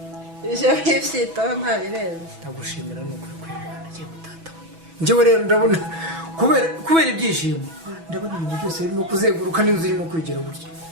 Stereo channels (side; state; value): left; late; 6.1 ms